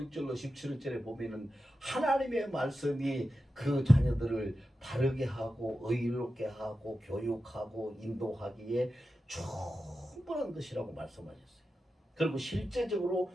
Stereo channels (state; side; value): normal; both; correlation 0.91